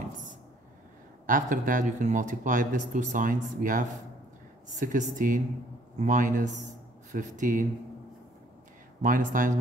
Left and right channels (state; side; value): normal; both; correlation 0.61